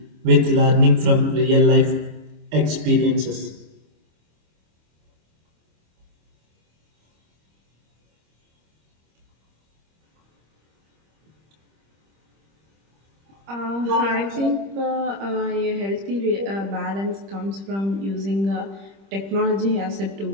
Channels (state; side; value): late; left; 25 ms